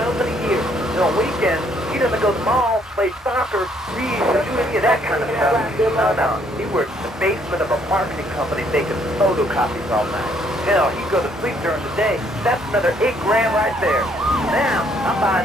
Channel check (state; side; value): normal; both; correlation 0.67